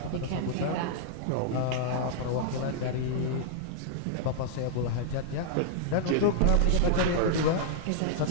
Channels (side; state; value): both; different; correlation -0.01